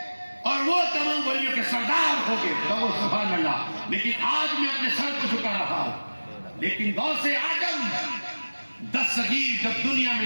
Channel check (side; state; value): both; inverted; correlation -1.00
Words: اور وہ تمام ولیوں کے سردار ہو گئے۔ کہو سبحان اللہ، لیکن آج میں اپنے سر کو جھکا رہا ہوں، لیکن غوث اعظم دستگیر جب دنیا میں